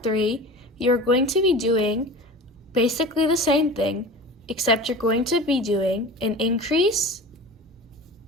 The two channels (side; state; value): both; normal; correlation 0.35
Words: 3, you're going to be doing basically the same thing, except you're going to be doing an increase,